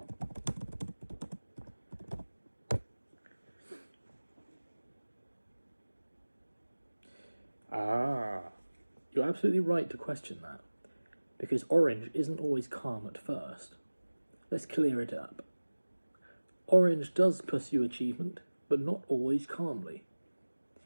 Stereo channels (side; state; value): both; inverted; correlation -1.00